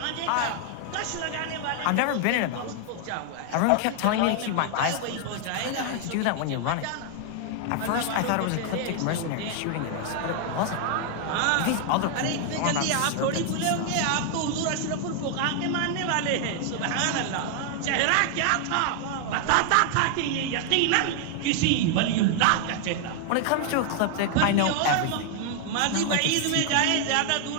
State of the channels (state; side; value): different; both; correlation 0.00